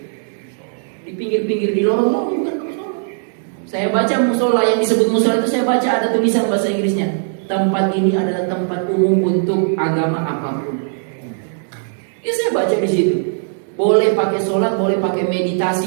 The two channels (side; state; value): left; silent; digital silence